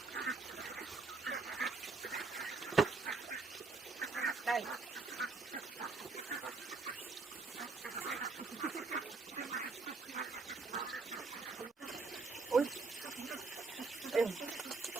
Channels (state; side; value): quieter; left; 4.1 dB